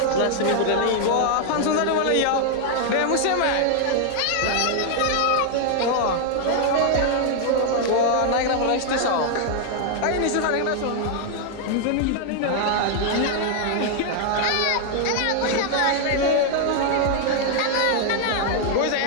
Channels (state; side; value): different; both; correlation 0.00